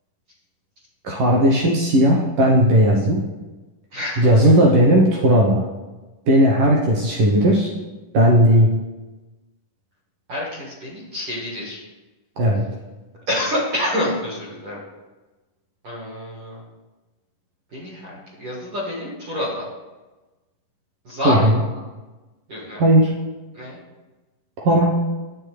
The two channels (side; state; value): left; late; 11 ms